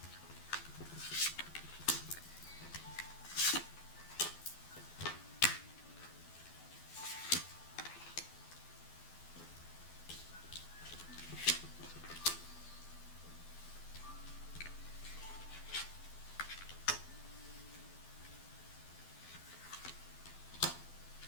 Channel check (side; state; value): right; late; 12 ms